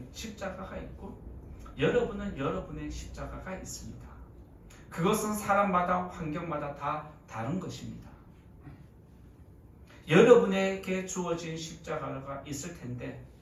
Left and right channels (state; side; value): identical; both; correlation 1.00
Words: 십자가가 있고 여러분은 여러분의 십자가가 있습니다. 그것은 사람마다 환경마다 다 다른 것입니다. 여러분에게 주어진 십자가가 있을 텐데